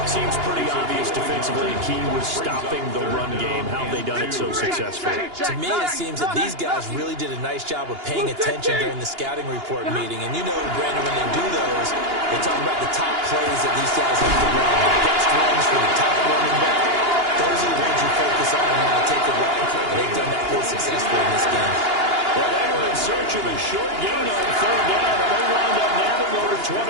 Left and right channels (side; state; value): left; late; 2.9 ms